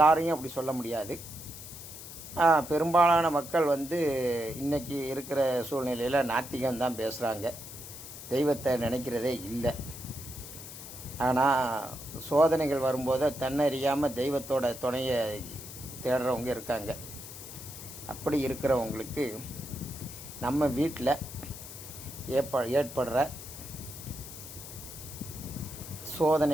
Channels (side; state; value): left; noise; hiss, 12 dB below the sound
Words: அப்படி சொல்ல முடியாது. பெரும்பாலான மக்கள் இன்றைக்கி இருக்கிற சூழ்நிலையில் நாத்திகம்தான் பேசுகிறாங்க, தெய்வத்தை நினைக்கிறதே இல்லை. ஆனால் சோதனைகள் வரும்போது தன்னறியாமல் தெய்வத்தோட துணையை தேடுறவங்க இருக்காங்க. அப்படி இருக்கிறவங்களுக்கு நம்ம வீட்டில் ஏற்படுற